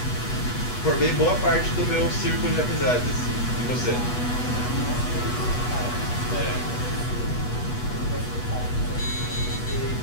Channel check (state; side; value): late; right; 8.2 ms